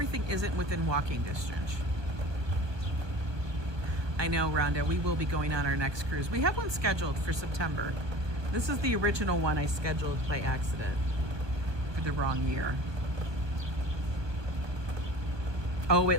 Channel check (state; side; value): late; left; 1.3 ms